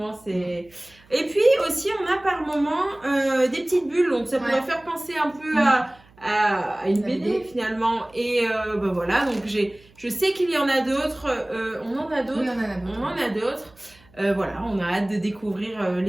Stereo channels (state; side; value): noise; right; hum, 28 dB below the sound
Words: c'est... Et puis aussi, on a par moment des petites bulles, donc ça pourrait faire penser un peu à une BD finalement. Et ben voilà, donc je sais qu'il y en a d'autres, on en a d'autres. Oui, on en a d'autres. Voilà, on a hâte de découvrir